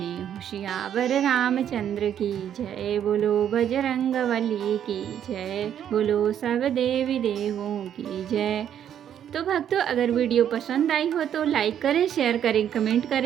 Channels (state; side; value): quieter; left; 9.7 dB